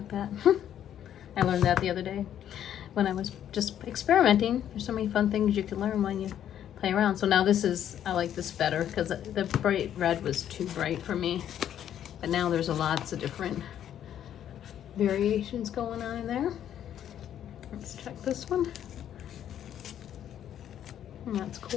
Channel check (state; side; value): quieter; right; 10.3 dB